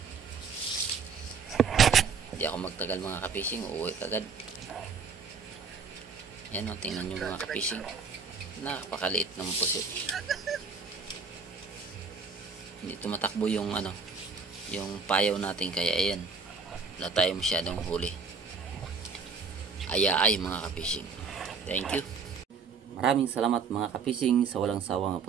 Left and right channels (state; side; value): quieter; left; 5.2 dB